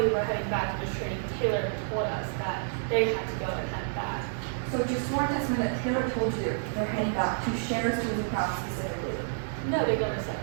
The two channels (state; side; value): silent; left; 58 dB below the other